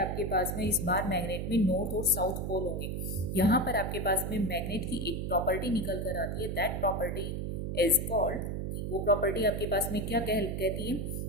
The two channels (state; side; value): noise; right; hum, 3 dB below the sound